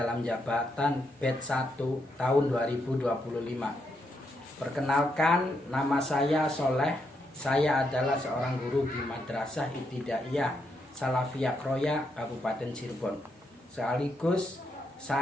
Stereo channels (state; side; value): normal; both; correlation 0.79